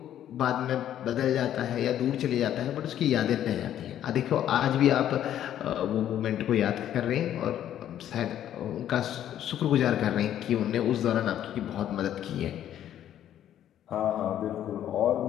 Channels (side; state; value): right; quieter; 11.1 dB